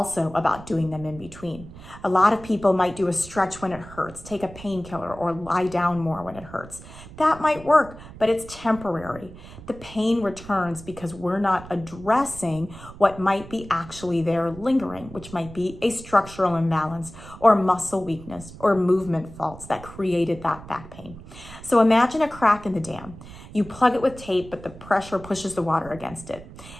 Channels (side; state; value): right; noise; rumble, 16 dB below the sound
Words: about doing them in between. A lot of people might do a stretch when it hurts, take a painkiller, or lie down more when it hurts. That might work, but it's temporary. The pain returns because we're not addressing what might be actually there lingering, which might be a structural imbalance or muscle weakness or movement faults that created that back pain. So imagine a crack in the dam. You plug it with tape, but the pressure pushes the water against it.